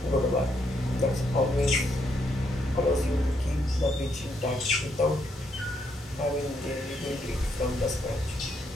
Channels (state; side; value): normal; both; correlation 0.76